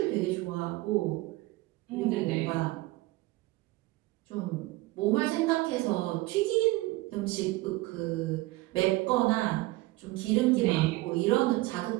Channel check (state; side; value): quieter; left; 19.7 dB